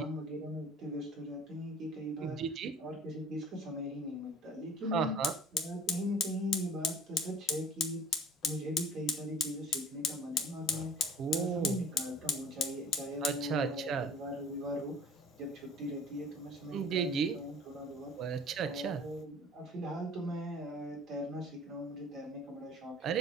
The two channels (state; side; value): normal; both; correlation 0.47